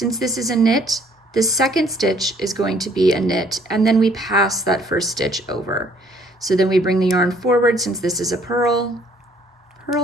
this is a knit, the second stitch is going to be a knit, and then we pass that first stitch over. So then we bring the yarn forward, since this is a purl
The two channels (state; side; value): normal; both; correlation 0.61